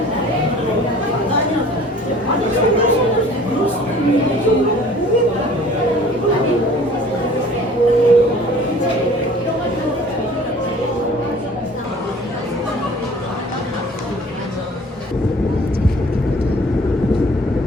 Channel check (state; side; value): normal; both; correlation 0.49